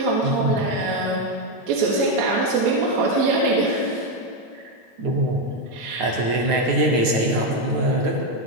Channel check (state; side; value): late; left; 9.4 ms